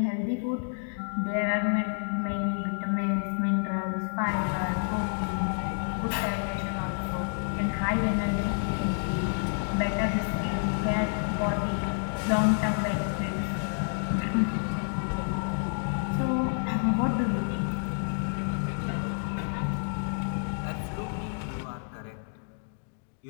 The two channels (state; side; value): silent; right; 58 dB below the other